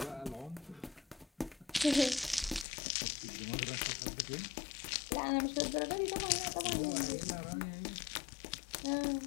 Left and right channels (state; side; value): drops out; right; at 2.7 s